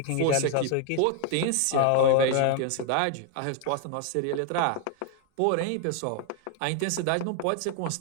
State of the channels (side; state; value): both; different; correlation 0.00